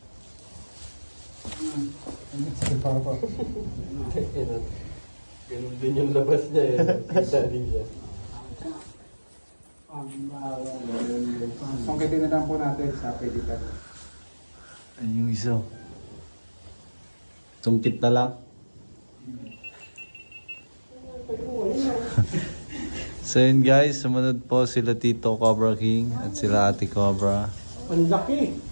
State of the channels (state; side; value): inverted; both; correlation -1.00